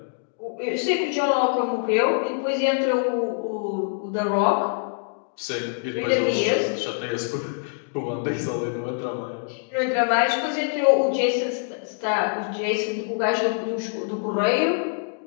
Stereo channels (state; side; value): silent; right; digital silence